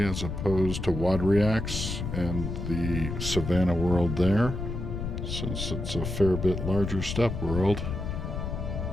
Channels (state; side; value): noise; left; rumble, 4 dB below the sound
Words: as opposed to Wadriax and the Savannah world there, since it's a fair bit larger steppe world.